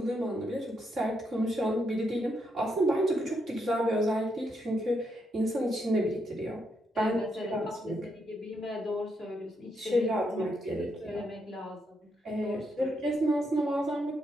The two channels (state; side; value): normal; both; correlation 0.79